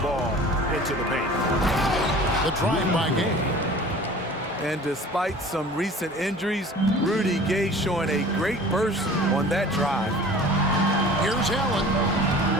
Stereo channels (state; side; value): normal; both; correlation 0.44